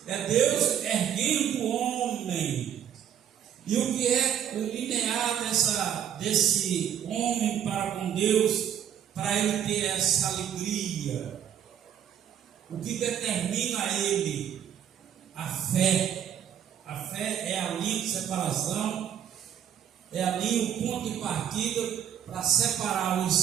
É Deus erguendo o homem. E o que é o linear desse homem para com Deus, para ele ter essa alegria? O que determina ele? A fé. A fé é a linha de separação, é ali o ponto de partida para separar os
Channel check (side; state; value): left; quieter; 9.4 dB